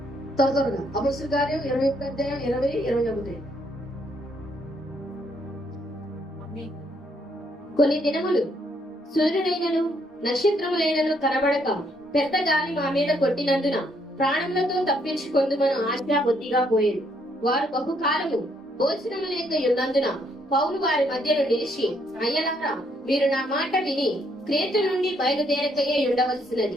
త్వరగా అపొస్తలుల కార్యం 21:20-21. కొన్ని దినములు సూర్యుడైనను నక్షత్రములైనను కనబడక పెద్ద గాలి మా మీద కొట్టినందున ప్రాణములతో తప్పించుకొందుమను ఆశ బుద్ధిగా పోయేది. వారు బహుకాలము భోజనము లేక ఉన్నందున పౌలు వారి మధ్యలో నిలిచి, అయ్యలారా, మీరు నా మాట విని క్రేతు నుండి బయలుదేరకయే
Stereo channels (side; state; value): both; normal; correlation 0.71